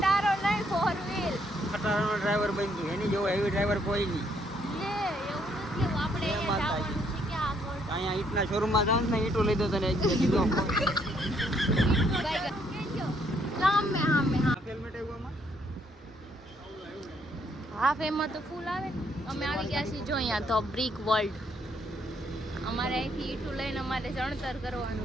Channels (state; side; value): normal; both; correlation 0.70